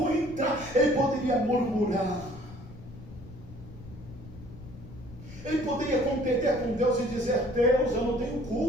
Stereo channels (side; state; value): left; noise; rumble, 16 dB below the sound